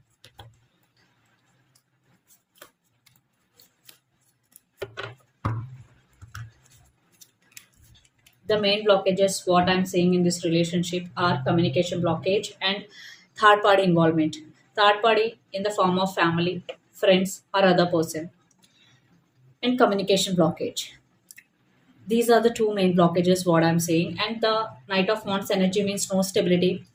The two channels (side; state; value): both; identical; correlation 1.00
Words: The main blockages what I'm seeing in this relationship are communication blockage and third party involvement. Third party in the form of family, friends, or other person, and communication blockage. These are the two main blockages what I'm saying. And the Knight of Wands energy means no stability.